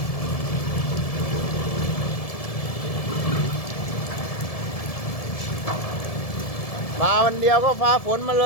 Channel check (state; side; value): late; right; 1.7 ms